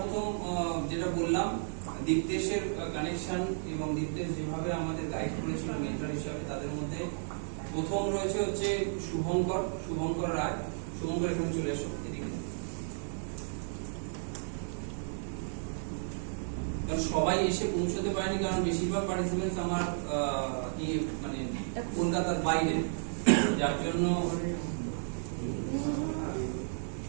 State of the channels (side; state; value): left; silent; 56 dB below the other